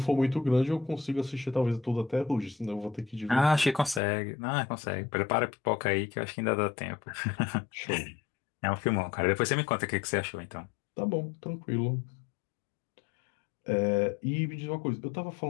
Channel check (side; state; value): right; drops out; at 4.0 s